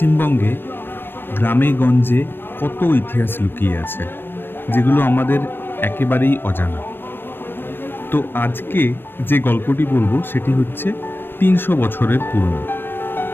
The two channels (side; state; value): right; late; 0.098 ms